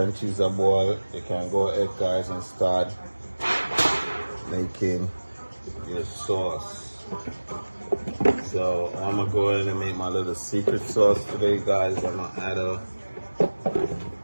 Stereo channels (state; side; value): inverted; both; correlation -1.00